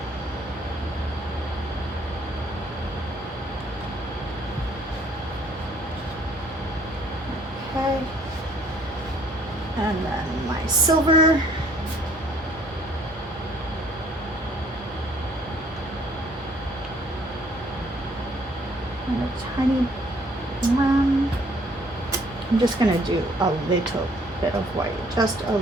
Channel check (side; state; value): both; normal; correlation 0.61